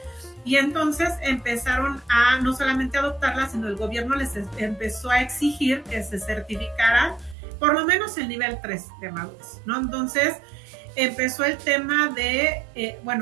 Y entonces empezaron a no solamente adoptarlas, sino el gobierno les empezó a exigir que se certificaran por lo menos el nivel 3 de madurez, ¿no? Entonces empezó el tema de,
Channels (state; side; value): drops out; left; at 7.4 s